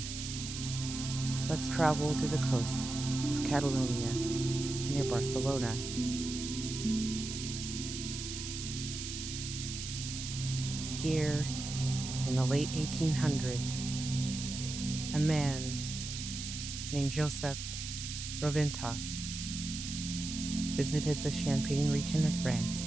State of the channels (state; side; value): noise; right; hiss, 6 dB below the sound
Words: let's travel to the coast of Catalonia near Barcelona. Here, in the late 1800s, a man named Josep Roventas visited the Champagne region of